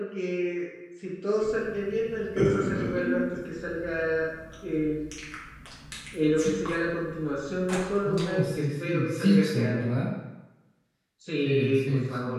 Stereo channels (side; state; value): both; identical; correlation 1.00